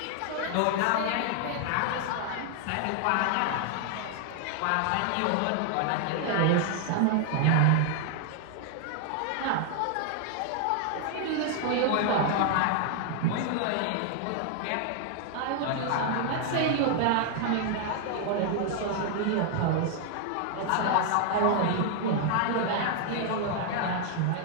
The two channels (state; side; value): different; both; correlation 0.00